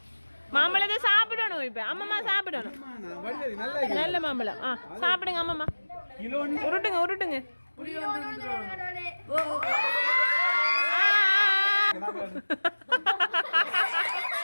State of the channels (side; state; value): both; inverted; correlation -1.00